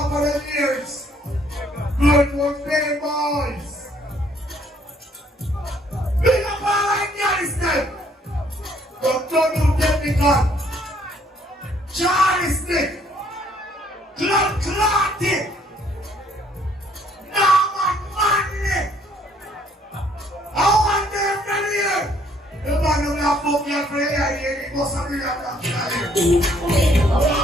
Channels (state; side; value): normal; both; correlation 0.64